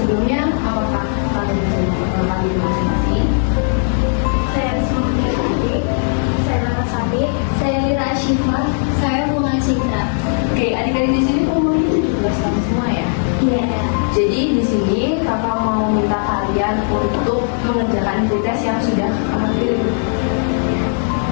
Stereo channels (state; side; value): silent; right; 68 dB below the other